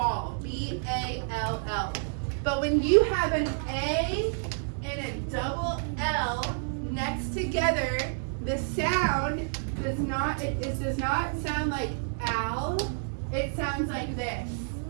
B-A-L-L. But when you have an A and a double L next together, the sound does not, it does not sound like owl, it sounds like this.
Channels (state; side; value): silent; left; digital silence